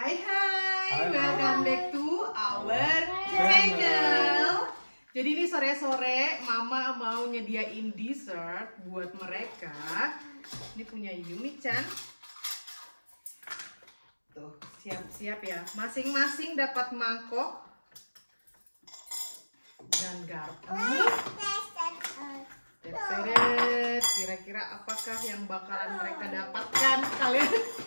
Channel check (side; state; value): both; inverted; correlation -1.00